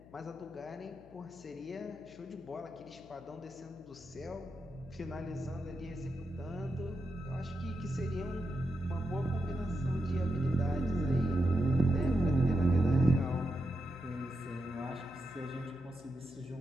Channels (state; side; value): noise; left; hum, 21 dB below the sound